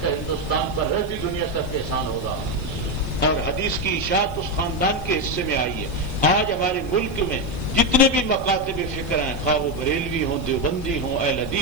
کا ہندوستان پر رہتی دنیا تک احسان ہوگا، اور حدیث کی اشاعت اس خاندان کے حصے میں آئی ہے. آج ہمارے ملک میں جتنے بھی مکاتب فکر ہیں، خواہ وہ بریلوی ہوں، دیوبندی ہوں، اہل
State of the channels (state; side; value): noise; left; hiss, 25 dB below the sound